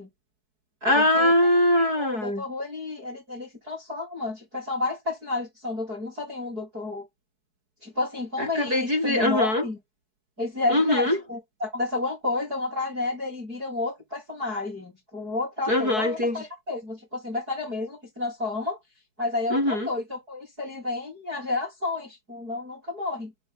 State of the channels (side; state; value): left; late; 4.7 ms